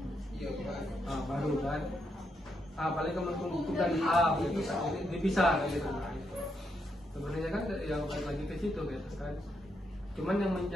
Iya, Baru kan. Paling Kementerian Hukum dan HAM gitu, dipisah gitu. Sebenarnya kan yang balik lagi ke situ gitu kan. Cuman yang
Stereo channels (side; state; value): both; normal; correlation 0.80